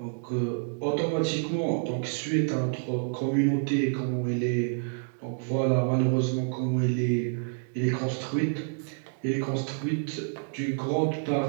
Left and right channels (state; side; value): silent; left; digital silence